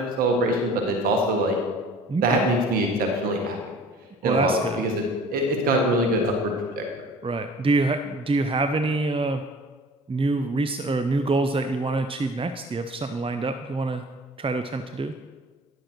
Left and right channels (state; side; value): normal; both; correlation 0.46